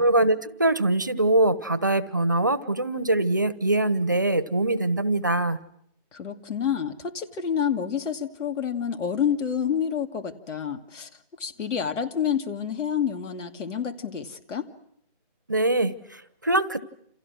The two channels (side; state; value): both; inverted; correlation -0.44